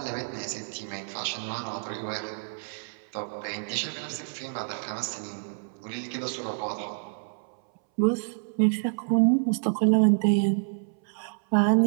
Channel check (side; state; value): left; silent; 59 dB below the other